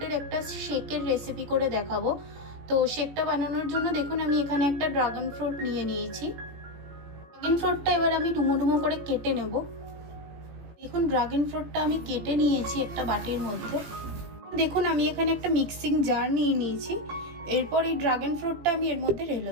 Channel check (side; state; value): left; late; 18 ms